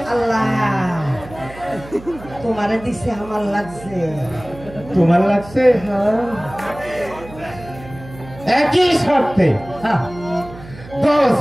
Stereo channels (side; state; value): right; noise; hum, 17 dB below the sound